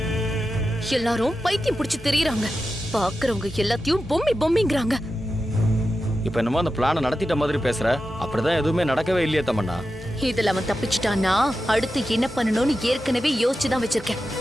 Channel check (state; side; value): normal; both; correlation 0.91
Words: எல்லாரும் பைத்தியம் பிடிச்சு தெரியறாங்க. பாக்குறவங்க எல்லாத்தையும் பொம்மி பொம்மிங்கறாங்க. இப்ப என்னமோ அந்த பிளானை நடத்திட்ட மாதிரி பேசுற. அப்படிதான் எதுவுமே நடக்கவே இல்லையே தமன்னா. இதுல அவன் தப்பிச்சிட்டான்னா அடுத்து என்ன பண்ணணும்னு ஏற்கனவே யோசிச்சுதான் வச்சிருக்கேன்.